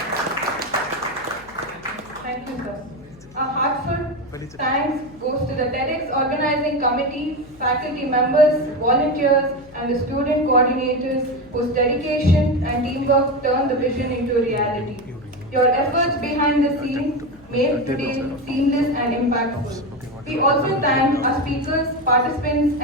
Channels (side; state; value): left; noise; hum, 25 dB below the sound